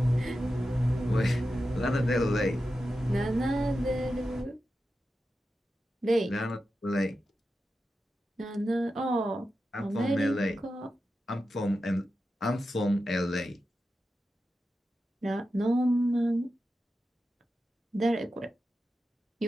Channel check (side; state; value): both; normal; correlation 0.91